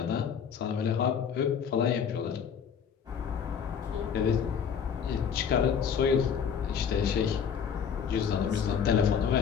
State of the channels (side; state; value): right; quieter; 7.3 dB